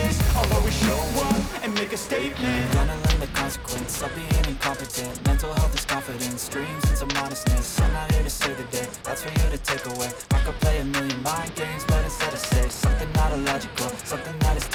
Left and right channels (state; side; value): identical; both; correlation 1.00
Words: I'll always show up and make a statement. Gonna learn the consequence of being incompetent. Mental health is confidence, dreams and some modestness. I'm not here to save the day, that's for you to take away. I could play a million mind games, but instead I say something not illogical, something that is